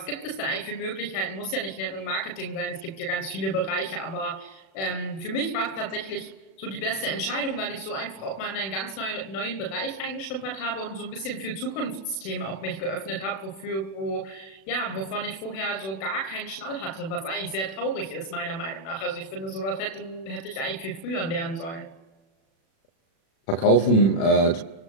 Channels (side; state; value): right; late; 36 ms